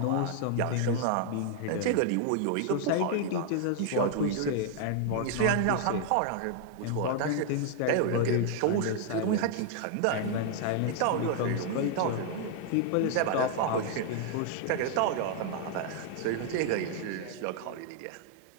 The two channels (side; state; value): both; different; correlation 0.00